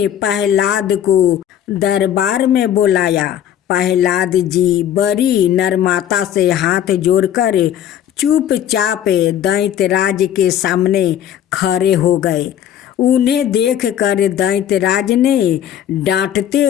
प्रहलाद को दरबार में बुलाया। प्रहलाद जी बड़ी नम्रता से हाथ जोड़कर चुपचाप दैत्यराज के सामने खड़े हो गए। उन्हें देखकर दैत्यराज ने डांटते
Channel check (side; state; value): right; quieter; 10.4 dB